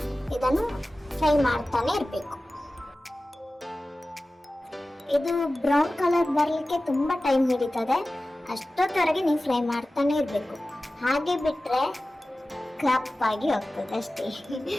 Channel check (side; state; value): both; normal; correlation 0.96